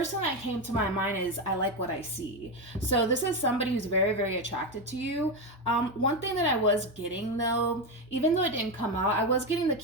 thing that came to my mind is, I like what I see. So this is somebody who's very, very attracted to you. One thing that I was getting though, even though it didn't come out, I was getting the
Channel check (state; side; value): normal; both; correlation 0.12